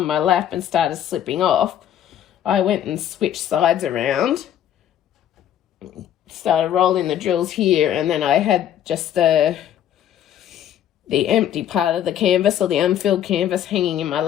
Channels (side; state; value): right; quieter; 10.6 dB